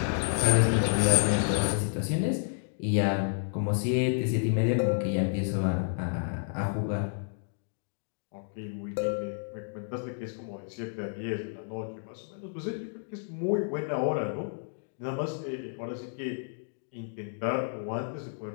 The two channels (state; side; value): silent; right; digital silence